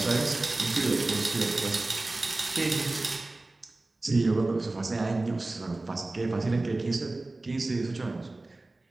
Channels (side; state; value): left; quieter; 3.0 dB